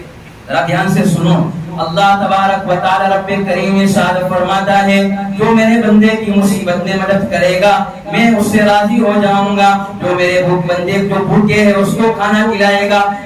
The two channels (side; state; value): both; identical; correlation 1.00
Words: ذرا دھیان سے سنو، اللہ تبارک و تعالی رب کریم ارشاد فرماتا ہے جو میرے بندے کی مصیبت میں مدد کرے گا میں اس سے راضی ہو جاؤں گا، جو میرے بندے جو بھوکے ہے اس کو کھانا کھلائے گا